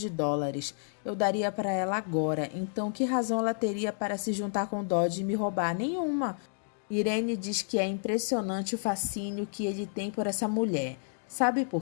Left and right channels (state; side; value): silent; right; digital silence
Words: dólares. Eu daria para ela agora. Então, que razão ela teria para se juntar com Dodge e me roubar? Nenhuma. Irene diz que é impressionante o fascínio que ele tem por essa mulher. Sabe